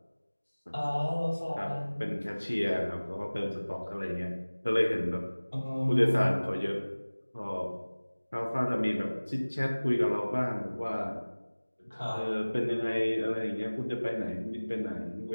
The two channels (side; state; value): both; inverted; correlation -1.00